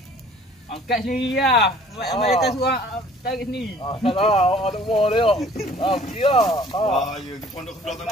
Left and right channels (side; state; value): both; normal; correlation 0.53